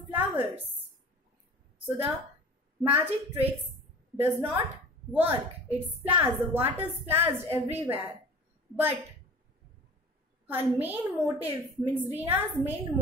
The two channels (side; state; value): both; normal; correlation 0.41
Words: So the magic tricks does not work. It splashes, the water splashed everywhere. But her main motive, means Reena's main